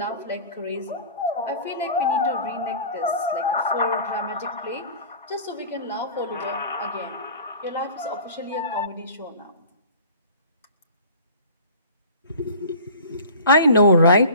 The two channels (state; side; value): inverted; both; correlation -0.42